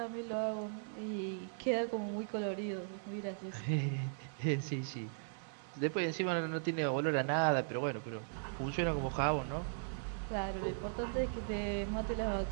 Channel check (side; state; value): left; silent; digital silence